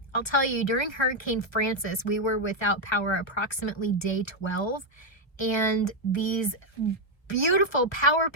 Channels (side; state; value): right; late; 1.1 ms